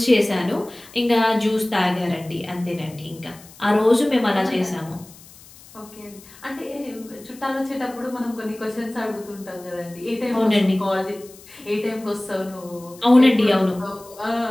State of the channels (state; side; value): noise; left; hiss, 22 dB below the sound